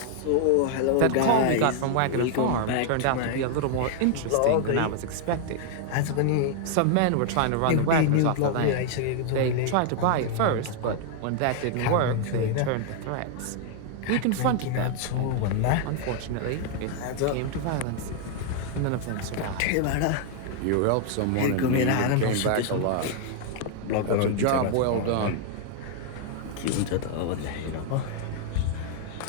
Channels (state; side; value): different; both; correlation 0.00